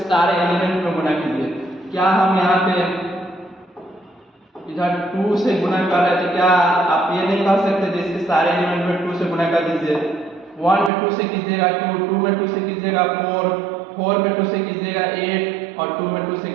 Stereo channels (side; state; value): left; drops out; at 10.9 s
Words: सारे एलिमेंट में गुना कीजिए। क्या हम यहाँ पे इधर 2 से गुना कर रहे थे, क्या आप ये नहीं कर सकते थे इसके सारे एलिमेंट में 2 से गुना कर दीजिए। 1 में 2 से कीजिएगा 2, 2 में 2 से कीजिएगा 4, 4 में 2 से कीजिएगा 8 और 2 में 2 से